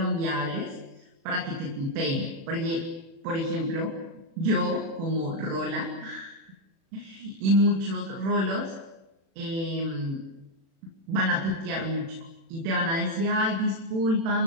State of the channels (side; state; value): left; late; 36 ms